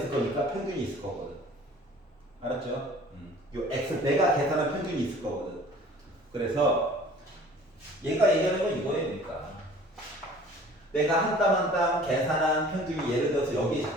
거니까 평균이 있을 거거든. 알았죠? 요 x 내가 계산한 평균이 있을 거거든. 그래서 얘가 얘기하는 건 이거예요. 그러니까 내가 한 땀 한 땀 계산한 평균이 예를 들어서 여기에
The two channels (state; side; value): normal; both; correlation 0.49